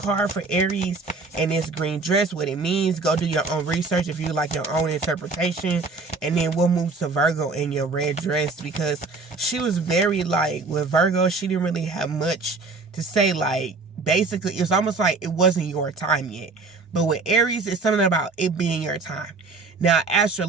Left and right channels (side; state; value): left; quieter; 3.9 dB